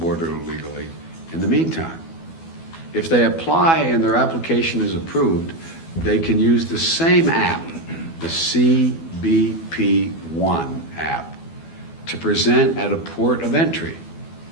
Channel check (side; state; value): right; late; 12 ms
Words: illegally in the meantime. If they apply and their application is approved, they can use the same app, the CBP1 app, to present at a port of entry